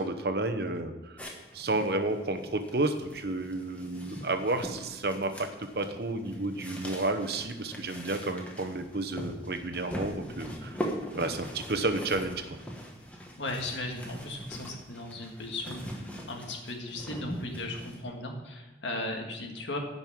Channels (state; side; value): normal; both; correlation 0.20